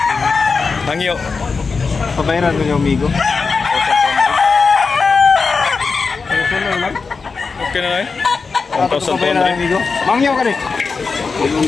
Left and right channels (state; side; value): quieter; right; 4.7 dB